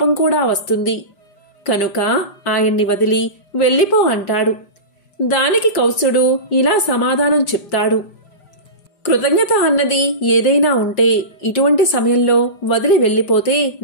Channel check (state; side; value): late; right; 5.0 ms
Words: కూడా వస్తుంది. కనుక ఆయన్ని వదిలి వెళ్ళిపో అంటాడు. దానికి కౌత్సుడు ఇలా సమాధానం చెప్తాడు. కృతజ్ఞత అన్నది ఏదైనా ఉంటే ఇటువంటి సమయంలో వదిలి వెళ్ళిపోతే